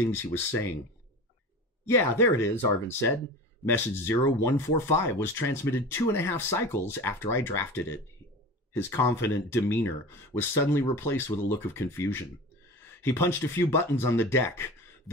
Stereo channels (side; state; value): both; normal; correlation 0.33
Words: he was saying. "Yeah, there it is," Arvin said. "Message 0145 was transmitted 2.5 cycles after I drafted it." His confident demeanor was suddenly replaced with a look of confusion. He punched a few buttons on the deck.